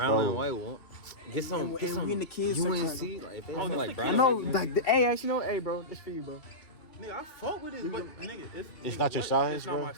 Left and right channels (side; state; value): right; late; 2.7 ms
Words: and white one. Get some. And Get some we in the kids UNC. section Like, if they Oh, have this like the brown. I kids know, and like, hey, actually, no, hey, bro, it's for you, bro. Nigga, I fuck with this, but nigga, it's not your size, It's not bro. my